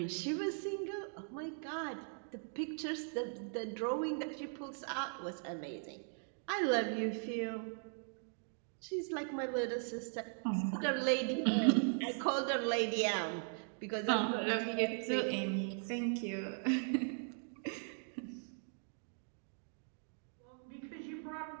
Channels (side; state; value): left; silent; 52 dB below the other